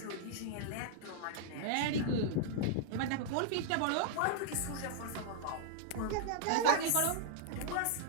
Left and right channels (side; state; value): both; different; correlation -0.01